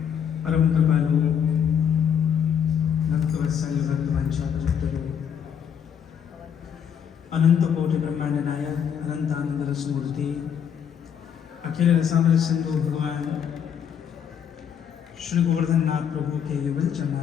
परम कृपालु भक्त वत्सल भक्त वंशावतारो अनंत कोटि ब्रह्मांड नायक अनंत आनंद रस मूर्ति अखिल रसामृत सिंधु भगवान श्री गोवर्धन नाथ प्रभु के युगल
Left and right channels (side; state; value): right; quieter; 8.1 dB